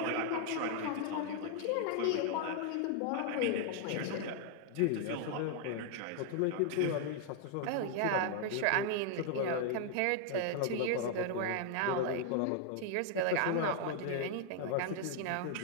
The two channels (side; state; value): both; different; correlation 0.00